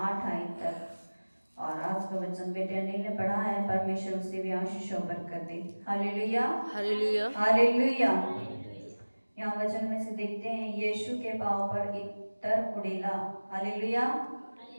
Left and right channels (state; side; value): inverted; both; correlation -1.00